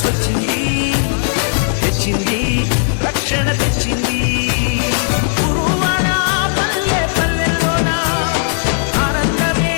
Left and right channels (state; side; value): silent; right; digital silence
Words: వచ్చింది, తెచ్చింది రక్షణ తెచ్చింది. గురువాన పల్లె పల్లెల్లోన ఆనందమే